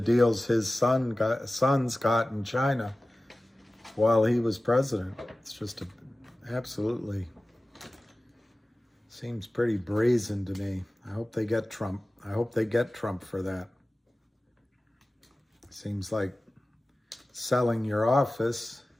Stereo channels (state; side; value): normal; both; correlation 0.97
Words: his sons got in China while he was president. It's just absolutely seems pretty brazen to me. I hope they get Trump. I hope they get Trump for that. Seems like selling your office